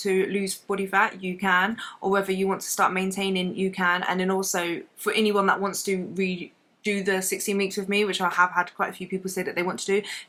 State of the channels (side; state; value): both; identical; correlation 1.00